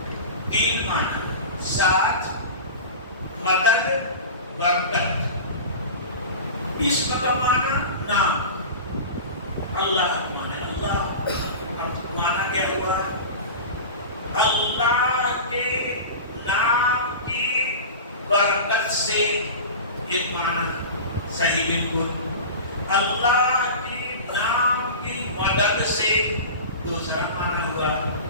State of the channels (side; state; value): both; inverted; correlation -0.32